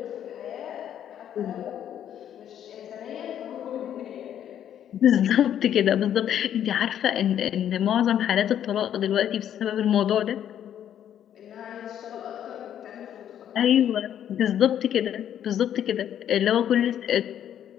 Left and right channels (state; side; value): quieter; right; 10.1 dB